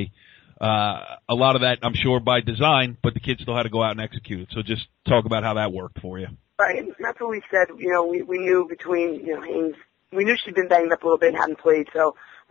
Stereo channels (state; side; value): quieter; right; 13.2 dB